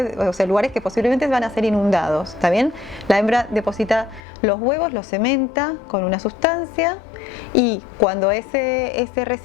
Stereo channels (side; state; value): right; drops out; at 4.2 s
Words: o sea, lugares que posiblemente van a ser inundados, ¿está bien? La hembra deposita los huevos, los cementa con una sustancia, y cuando ese